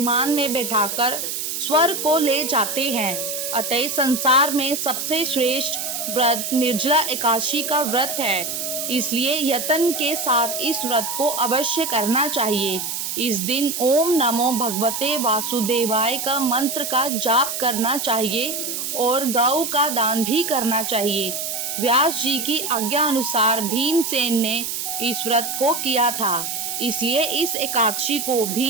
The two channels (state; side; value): noise; right; hiss, 4 dB below the sound